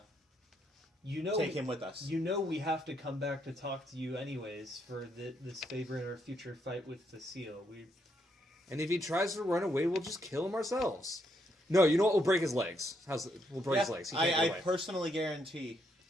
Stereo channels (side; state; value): both; normal; correlation 0.76